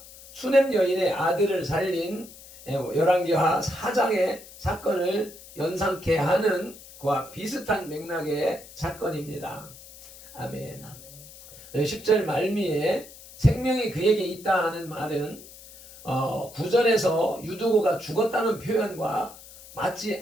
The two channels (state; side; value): noise; left; hiss, 19 dB below the sound